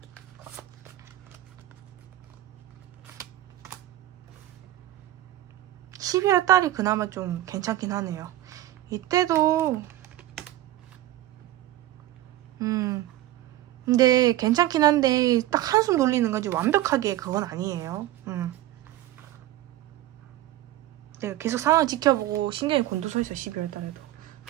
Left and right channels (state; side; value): quieter; left; 14.6 dB